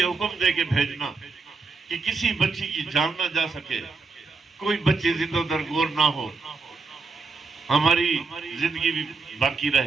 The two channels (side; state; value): left; quieter; 4.2 dB